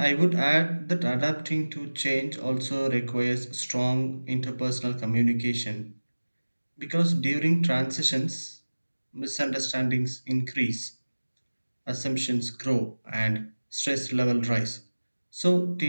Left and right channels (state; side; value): inverted; both; correlation -1.00